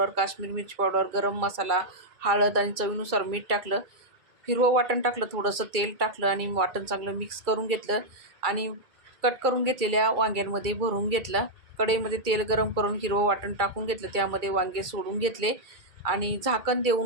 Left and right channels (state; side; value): late; left; 2.3 ms